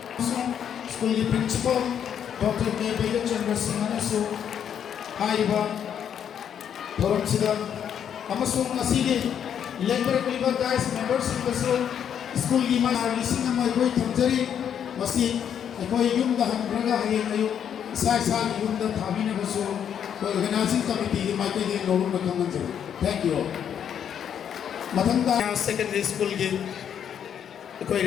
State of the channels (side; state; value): right; quieter; 8.7 dB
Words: school principal, Dr. K. Chandra Singh, Haiba, Thoram Amasung Labor guys, members of the school Lising and my boy Tamjari, Masi, a boy Yum the Hambraga, Sai Yum the Tabina Basu, organizing committee, Michael Norum the Commander. Thank you all. Matanga secondary school game.